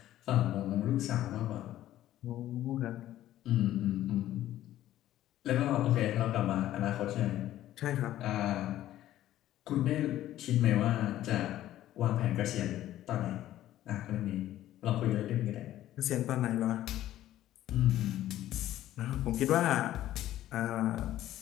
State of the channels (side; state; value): right; quieter; 13.5 dB